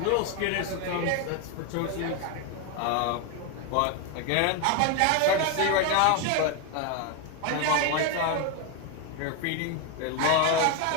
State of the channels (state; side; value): different; both; correlation 0.01